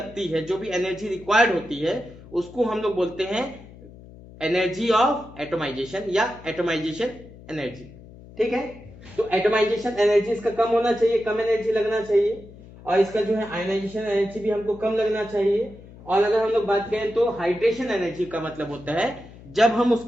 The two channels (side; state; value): left; noise; hum, 19 dB below the sound